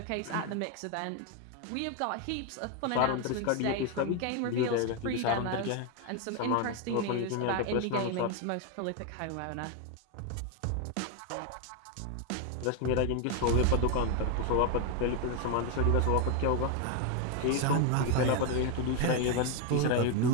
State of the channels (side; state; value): both; different; correlation 0.01